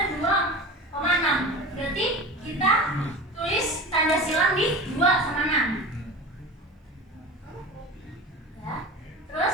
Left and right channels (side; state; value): both; normal; correlation 0.33